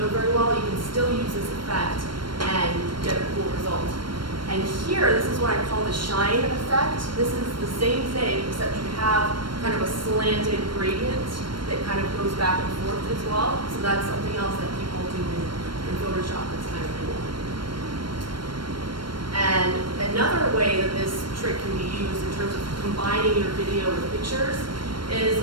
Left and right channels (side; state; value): left; late; 0.72 ms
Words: very well, you can still use this effect and get a cool result. And here, this is what I call the shine effect. This is the same thing, except you have kind of a slanted gradient that kind of goes back and forth as well. So that's something else that people do in Photoshop that's kind of cool. And another way that this trick can be used in terms of combining your video with pictures is,